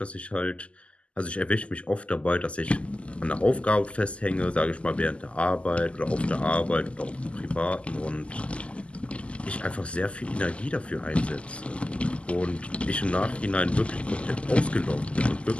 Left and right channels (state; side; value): late; right; 0.057 ms